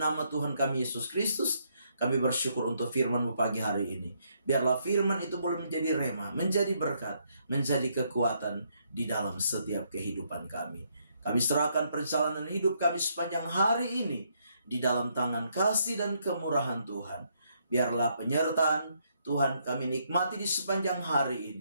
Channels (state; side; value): inverted; both; correlation -0.74